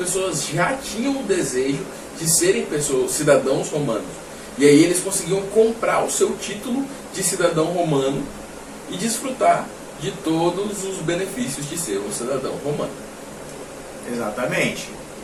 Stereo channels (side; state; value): both; identical; correlation 1.00